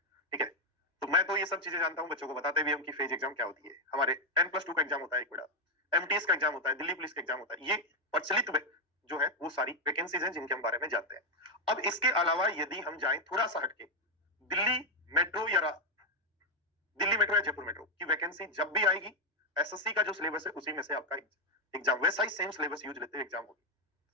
ठीक है। तो मैं तो ये सब चीजें जानता हूँ, बच्चों को बताते भी हम कि फेज एग्जाम क्या होती है। हमारे 10+2 का एग्जाम होता है एक बड़ा, एमटीएस का एग्जाम होता है, दिल्ली पुलिस का एग्जाम होता है, ये प्रचलित जो है वो सारी वैकेंसीज हैं जिनके हम बारे में जानते हैं। अब इसके अलावा यदि हम जाएं थोड़ा सा हटके, दिल्ली मेट्रो या जयपुर मेट्रो की वैकेंसी जब भी आएगी, एसएससी का जो सिलेबस है उसी में से आपका एग्जाम वैसा ही सेम सिलेबस यूज लेते हुए एग्जाम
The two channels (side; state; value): both; normal; correlation 0.03